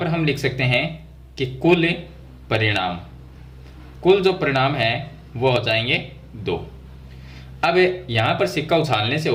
हम लिख सकते हैं कि कुल परिणाम, कुल जो परिणाम है वो हो जाएंगे दो। अब यहाँ पर सिक्का उछालने से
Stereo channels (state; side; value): identical; both; correlation 1.00